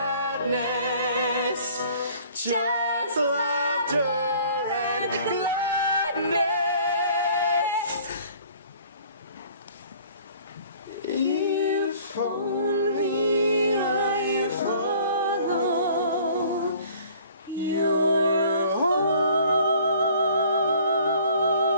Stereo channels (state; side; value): inverted; both; correlation -0.52